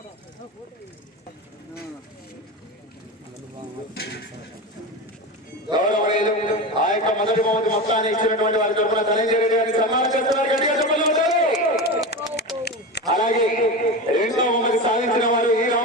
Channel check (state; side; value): normal; both; correlation 0.23